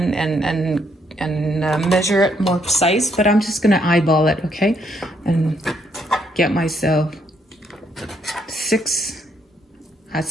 measure it more precise, but I'm just gonna eyeball it, okay? And get myself 6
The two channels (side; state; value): both; normal; correlation 0.73